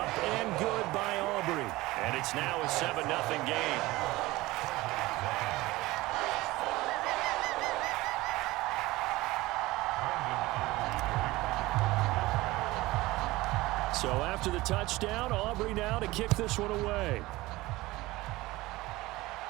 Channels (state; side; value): quieter; left; 19.4 dB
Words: and good by Aubrey. And it's now a 7-0 game. So after the touchdown, Aubrey now to kick this one away.